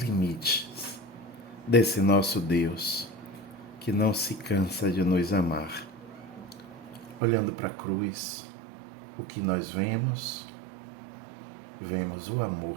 desse nosso Deus que não se cansa de nos amar. Olhando para a cruz, o que nós vemos? Vemos o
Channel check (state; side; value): drops out; left; at 7.2 s